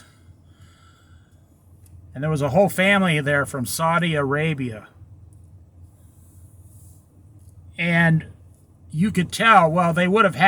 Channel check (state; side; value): identical; both; correlation 1.00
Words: And there was a whole family there from Saudi Arabia. And you could tell, well, they would have